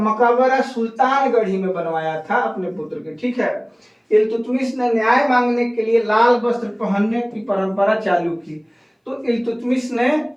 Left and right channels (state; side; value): identical; both; correlation 1.00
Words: सुल्तानगढ़ी में बनवाया था अपने पुत्र के, ठीक है। इल्तुतमिश ने न्याय मांगने के लिए लाल वस्त्र पहनने की परंपरा चालू की। तो इल्तुतमिश ने